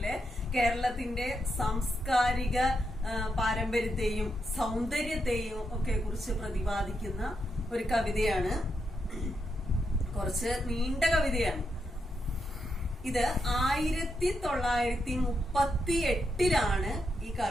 കേരളത്തിന്റെ സാംസ്കാരിക പാരമ്പര്യത്തെയും സൗന്ദര്യത്തെയും ഒക്കെ കുറിച്ച് പ്രതിപാദിക്കുന്ന ഒരു കവിതയാണ്. കുറച്ച് നീണ്ട കവിതയാണ്. ഇത് 1938 ഈ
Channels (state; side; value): normal; both; correlation 0.83